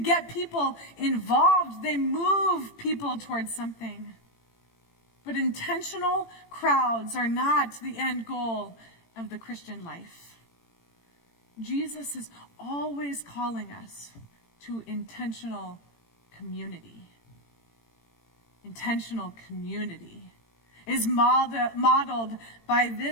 people involved. They move people towards something. But intentional crowds are not the end goal of the Christian life. Jesus is always calling us to intentional community. Intentional community is modeled by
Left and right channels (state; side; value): late; right; 18 ms